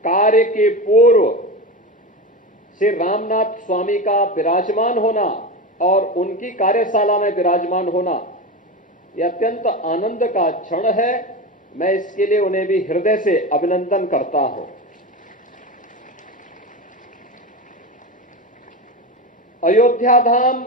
कार्य के पूर्व श्री रामनाथ स्वामी का विराजमान होना और उनकी कार्यशाला में विराजमान होना यह अत्यंत आनंद का क्षण है। मैं इसके लिए उन्हें भी हृदय से अभिनंदन करता हूं। अयोध्या धाम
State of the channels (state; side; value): normal; both; correlation 0.22